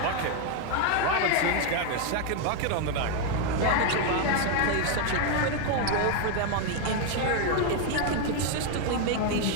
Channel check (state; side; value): different; both; correlation 0.01